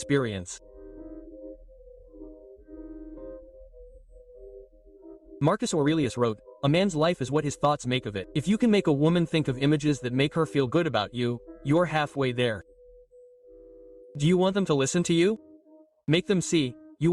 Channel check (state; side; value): identical; both; correlation 1.00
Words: Marcus Aurelius wrote, "A man's life is what his thoughts make of it." If you can make a woman think of images that make her feel good about you, you're halfway there. Do you want them to listen to you? Make them see. You